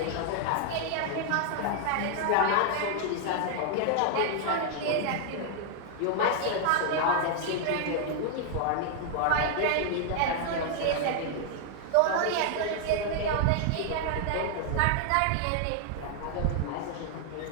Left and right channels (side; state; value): both; different; correlation 0.00